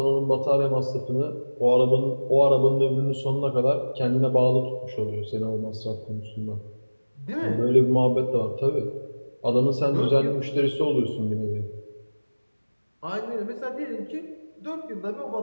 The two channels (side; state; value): both; inverted; correlation -1.00